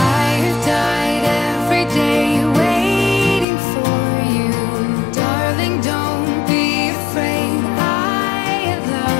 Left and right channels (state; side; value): drops out; right; at 3.5 s